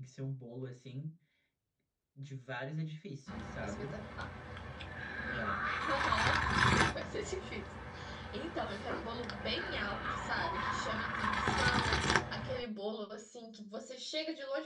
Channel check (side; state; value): both; identical; correlation 1.00